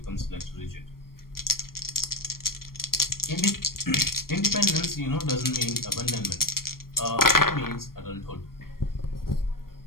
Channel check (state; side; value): late; right; 0.93 ms